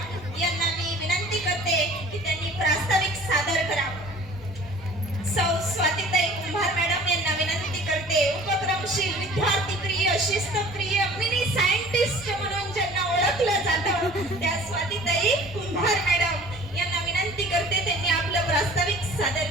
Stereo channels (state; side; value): normal; both; correlation 0.47